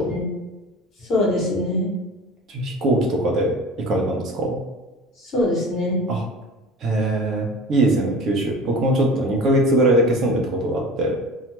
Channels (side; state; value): both; normal; correlation 0.37